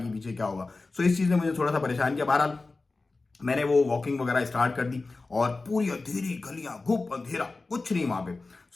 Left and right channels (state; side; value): quieter; right; 3.6 dB